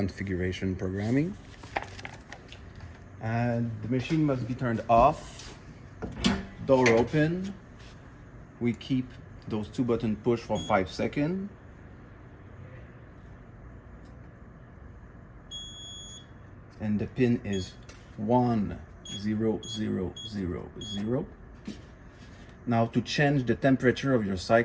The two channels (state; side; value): identical; both; correlation 1.00